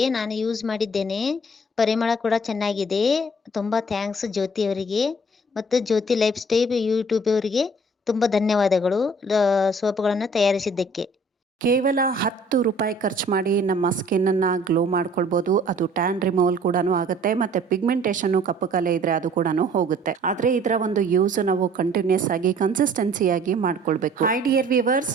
ನಾನು ಯೂಸ್ ಮಾಡಿದ್ದೇನೆ. ಪರಿಮಳ ಕೂಡ ಚೆನ್ನಾಗಿದೆ. ತುಂಬಾ ಥ್ಯಾಂಕ್ಸ್ ಜ್ಯೋತಿ ಅವರಿಗೆ ಮತ್ತು ಜ್ಯೋತಿ ಲೈಫ್ ಸ್ಟೈಲ್ ಯೂಟ್ಯೂಬ್ ಅವರಿಗೆ ತುಂಬ ಧನ್ಯವಾದಗಳು ಸೋಪ್ಗಳನ್ನು ತಯಾರಿಸಿದ್ದಕ್ಕೆ. ಕೇವಲ 10 ರೂಪಾಯಿ ಖರ್ಚು ಮಾಡಿ ನಮ್ಮ ಸ್ಕಿನ್ನನ್ನು ಗ್ಲೋ ಮಾಡ್ಕೊಳ್ಬೋದು. ಅದು ಟ್ಯಾನ್ ರಿಮೂವಲ್ ಕೂಡ ಆಗುತ್ತೆ ಮತ್ತು ಪಿಗ್ಮೆಂಟೇಷನ್ನು ಕಪ್ಪು ಕಲೆ ಇದ್ರೆ ಅದು ಕೂಡ ಹೋಗುತ್ತೆ. ಆದರೆ ಇದರ ಒಂದು ಯೂಸ್ ನಾವು ಕಂಟಿನ್ಯೂಸ್ ಆಗಿ ಕನ್ಸಿಸ್ಟೆನ್ಸಿಯಾಗಿ ಮಾಡ್ಕೊಳ್ಬೇಕು. Hi dear viewers,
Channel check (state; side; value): normal; both; correlation 0.55